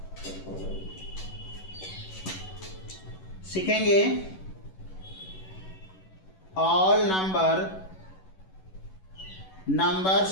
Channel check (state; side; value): late; right; 11 ms